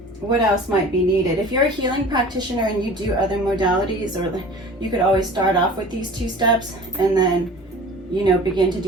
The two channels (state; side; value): normal; both; correlation 0.42